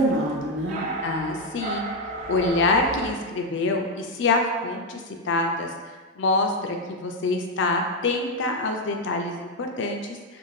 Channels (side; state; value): both; normal; correlation 0.04